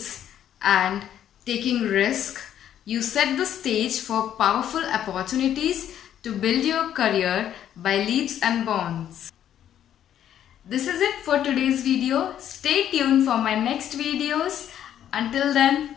and taking risk, you set the stage for powerful opportunities to build your career by leaps and bounds. This is it for today's video. Stay tuned for my next videos. Until then,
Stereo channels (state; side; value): quieter; right; 10.5 dB